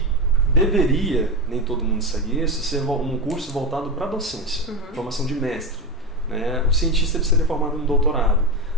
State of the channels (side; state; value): both; normal; correlation 0.16